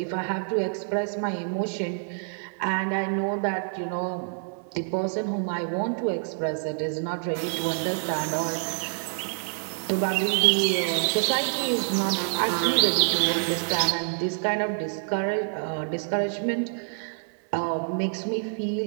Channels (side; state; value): left; silent; 60 dB below the other